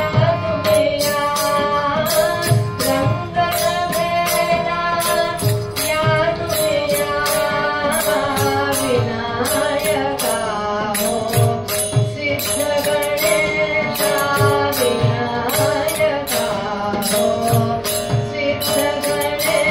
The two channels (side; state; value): both; identical; correlation 1.00